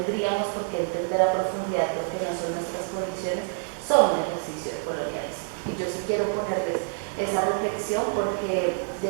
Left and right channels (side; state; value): left; silent; 60 dB below the other